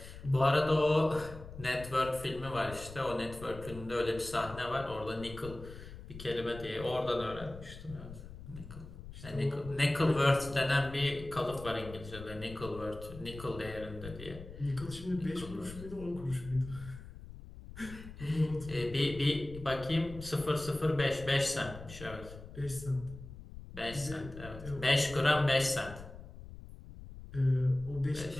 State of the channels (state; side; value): noise; left; rumble, 14 dB below the sound